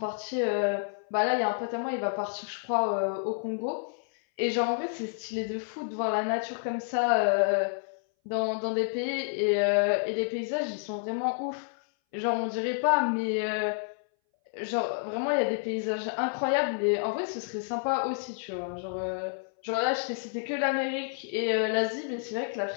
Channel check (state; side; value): silent; right; 58 dB below the other